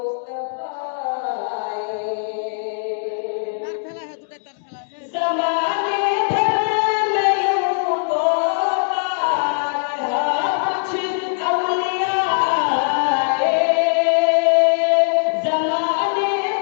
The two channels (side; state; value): right; silent; digital silence